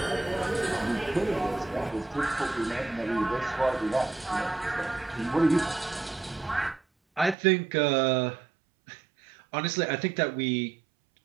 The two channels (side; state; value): left; drops out; at 7.4 s